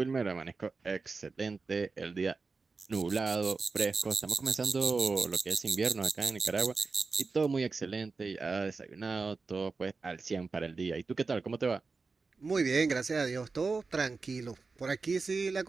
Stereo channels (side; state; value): left; quieter; 4.3 dB